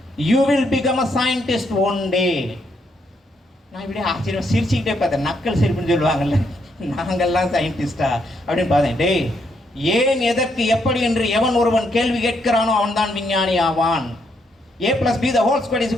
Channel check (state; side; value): normal; both; correlation 0.76